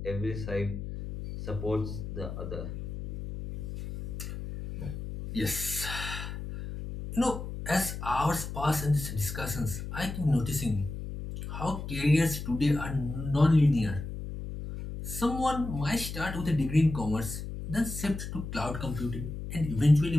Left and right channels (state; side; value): noise; left; hum, 7 dB below the sound